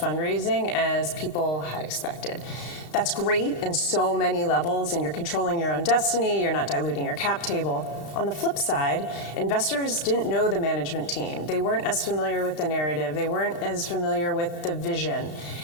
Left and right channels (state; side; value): late; right; 33 ms